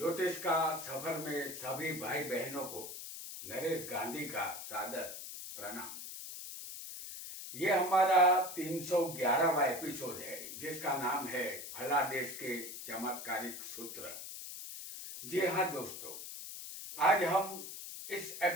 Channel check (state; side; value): noise; left; hiss, 9 dB below the sound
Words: का सफर में सभी भाई बहनों को नरेश गांधी का सादर प्रणाम। ये हमारा 311वां एपिसोड है जिसका नाम है फलादेश के चमत्कारिक सूत्र। जी हाँ दोस्तों, आज हम इस